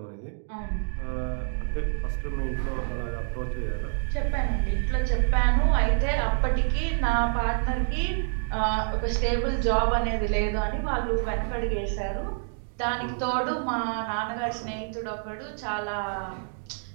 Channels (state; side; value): silent; left; digital silence